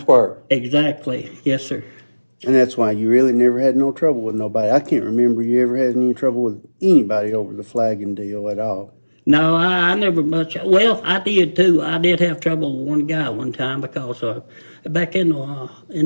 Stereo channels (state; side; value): inverted; both; correlation -1.00